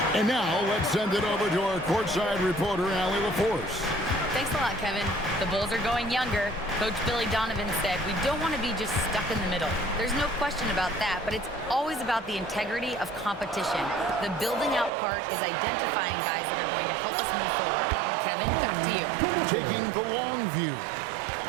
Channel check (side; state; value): left; drops out; at 14.9 s